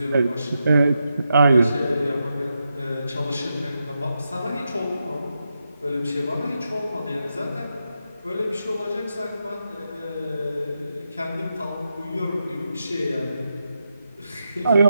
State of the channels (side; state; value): both; inverted; correlation -0.86